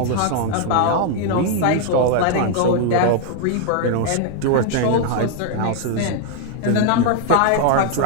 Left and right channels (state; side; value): different; both; correlation 0.00